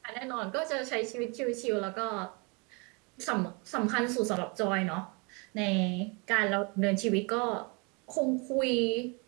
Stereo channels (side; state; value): left; quieter; 31.2 dB